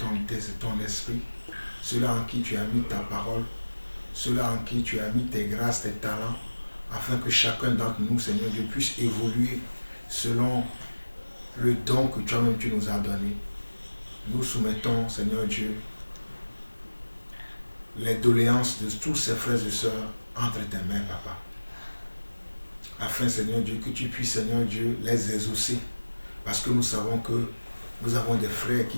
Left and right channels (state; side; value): inverted; both; correlation -1.00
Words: esprit, ceux-là en qui tu as mis ta parole, ceux-là en qui tu as mis tes grâces, tes talents, afin que chacun d'entre nous, Seigneur Dieu, puisse évoluer selon le don que toi-même tu nous as donné. Nous soumettons, Seigneur Dieu, les doléances de tous ces frères et sœurs entre tes mains, Papa. Afin, Seigneur Dieu, que tu puisses, Seigneur Dieu, les exaucer. Parce que nous savons que nous avons des frères